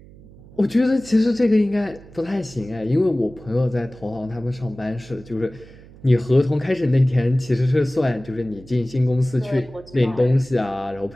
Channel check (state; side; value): noise; right; hum, 21 dB below the sound